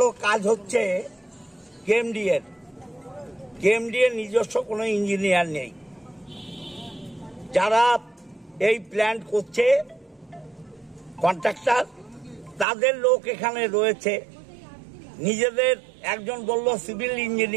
কাজ হচ্ছে কেএমডিএর নিজস্ব কোনো ইঞ্জিনিয়ার নেই। যারা এই প্ল্যান করছে কন্ট্রাক্টর, তাদের লোক এখানে রয়েছে। নিজেদের একজন বলল সিভিল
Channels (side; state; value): left; drops out; at 12.7 s